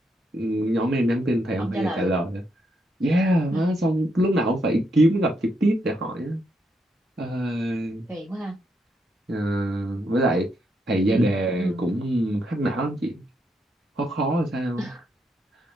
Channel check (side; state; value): both; normal; correlation 0.79